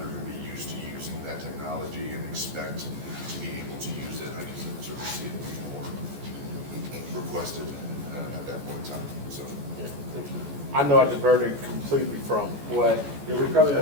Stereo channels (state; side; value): late; left; 14 ms